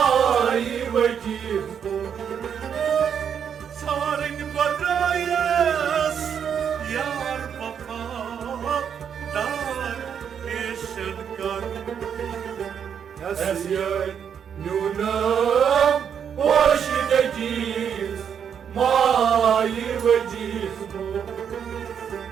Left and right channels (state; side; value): quieter; left; 7.9 dB